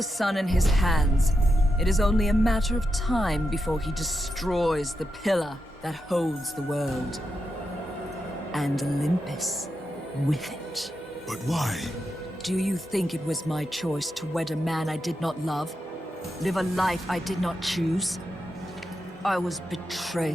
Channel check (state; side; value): normal; both; correlation 0.86